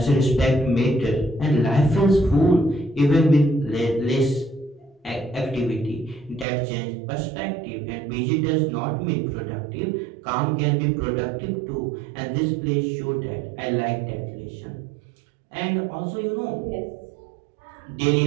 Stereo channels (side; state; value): left; drops out; at 6.5 s